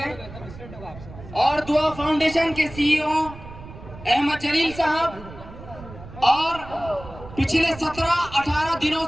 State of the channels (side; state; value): right; noise; rumble, 16 dB below the sound